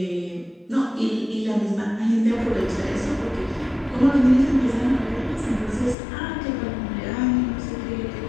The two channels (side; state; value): right; drops out; at 6.0 s